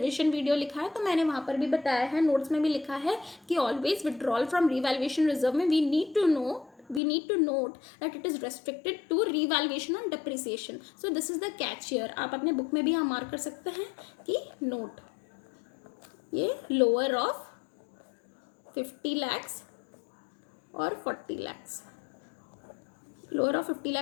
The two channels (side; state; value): right; drops out; at 7.0 s